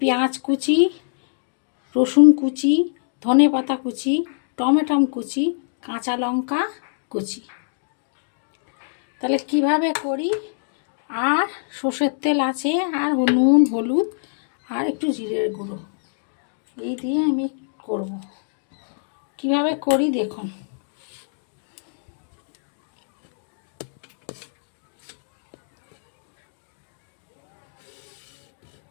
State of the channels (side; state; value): right; silent; digital silence